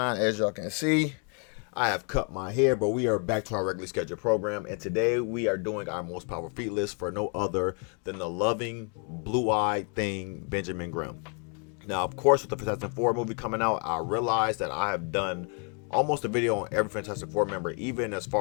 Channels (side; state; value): right; quieter; 38.6 dB